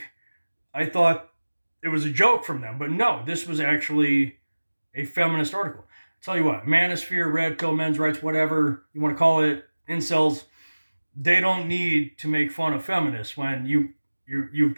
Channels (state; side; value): inverted; both; correlation -1.00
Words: I thought it was a joke from them, but no, this was actually a feminist article. I'll tell you what, manosphere, red pill, men's rights, whatever you want to call it, incels, they don't need to make fun of feminists when you've